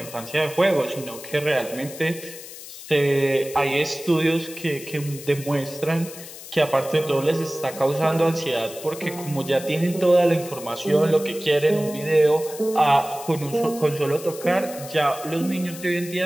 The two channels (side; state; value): left; noise; hiss, 14 dB below the sound